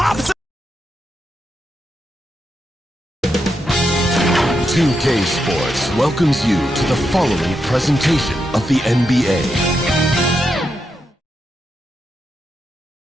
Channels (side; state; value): both; normal; correlation 0.84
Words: 2K Sports welcomes you to the following presentation of the NBA.